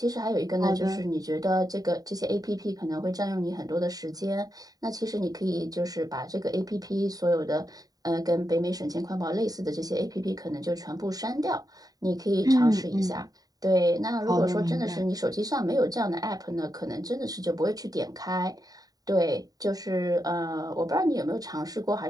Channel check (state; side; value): late; left; 0.18 ms